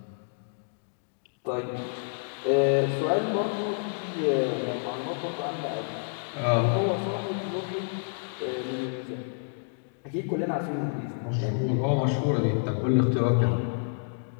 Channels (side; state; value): right; silent; digital silence